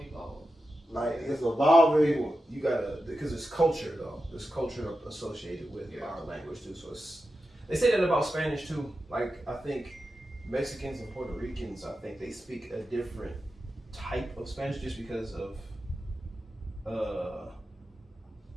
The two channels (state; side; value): normal; both; correlation 0.91